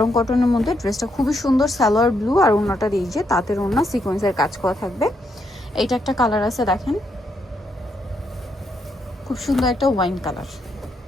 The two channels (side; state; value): both; normal; correlation 0.78